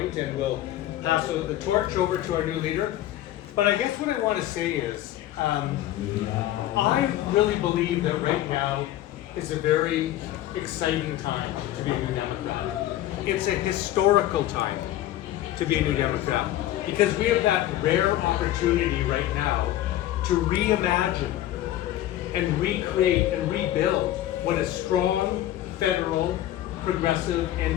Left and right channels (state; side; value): quieter; right; 13.6 dB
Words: and we'll pass the torch over to our new leader. But I guess what I want to say is, I really believe that right now is a very exciting time to be a New Democrat. It's a historical time to be a New Democrat because we have that rare opportunity right now to reimagine and recreate and rebuild what a strong federal progressive